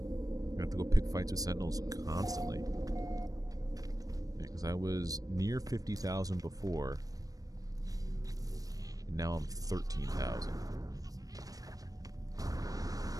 I have to go pick fights with Sentinels constantly. Because I was near 50,000 before. And now I'm 13,000.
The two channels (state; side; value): late; left; 0.18 ms